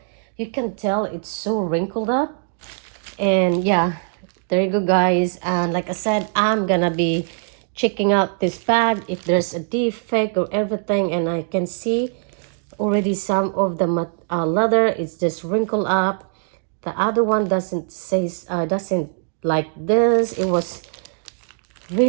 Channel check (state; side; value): silent; left; digital silence